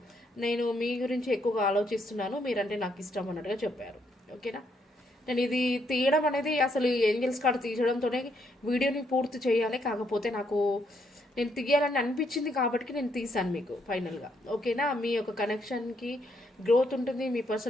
నేను మీ గురించి ఎక్కువగా ఆలోచిస్తున్నాను, మీరంటే నాకు ఇష్టం అన్నట్టుగా చెప్పారు. ఓకేనా, నేను ఇది తీయడం అనేది అసలు ఏంజల్స్ కార్డ్ తీయడంతోనే వీడియోని పూర్తి చేయాలి. కాకపోతే నేను తీయాలని అనిపించింది కాబట్టి నేను తీసాను మీకు ఫైనల్గా. ఓకేనా, మీ యొక్క కనెక్షన్కి గ్రోత్ ఉంటుంది. మీ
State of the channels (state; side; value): normal; both; correlation 0.74